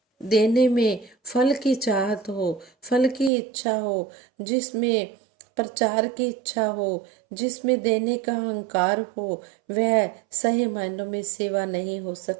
देने में फल की चाहत हो, फल की इच्छा हो, जिसमें प्रचार की इच्छा हो, जिसमें देने का अहंकार हो, वह सही मायनों में सेवा नहीं हो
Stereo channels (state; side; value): drops out; left; at 3.3 s